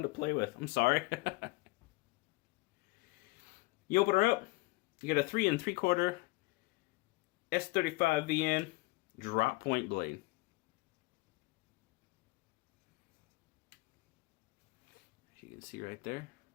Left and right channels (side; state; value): right; quieter; 23.5 dB